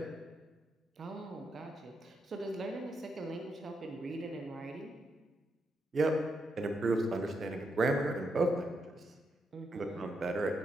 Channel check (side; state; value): both; normal; correlation 0.82